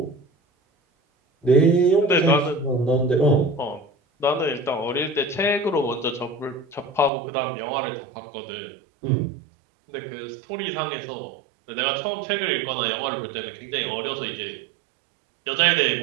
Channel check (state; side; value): drops out; left; at 7.1 s